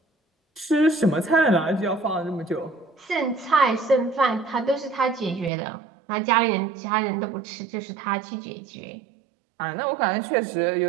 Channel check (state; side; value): drops out; left; at 5.5 s